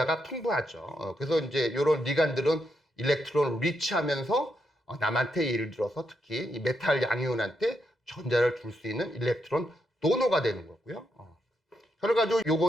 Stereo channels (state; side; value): normal; both; correlation 0.81